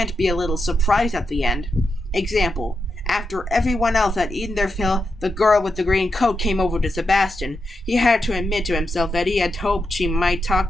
be a little surprise at the end. Example, after everyone else had eaten their fill, the girl with the green coat came over to Sebastian. He had to admit to himself that he had hoped she might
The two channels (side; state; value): both; normal; correlation 0.86